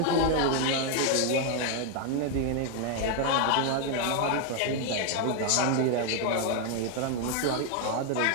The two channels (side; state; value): both; different; correlation 0.01